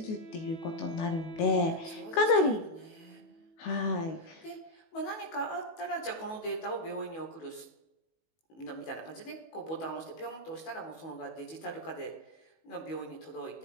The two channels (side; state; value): right; late; 18 ms